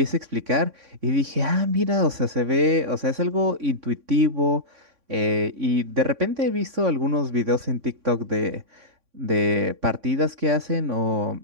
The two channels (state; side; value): late; left; 3.6 ms